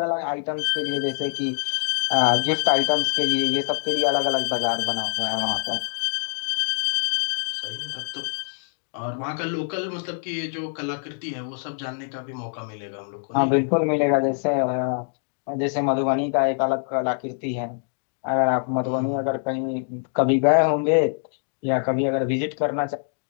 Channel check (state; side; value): silent; right; 62 dB below the other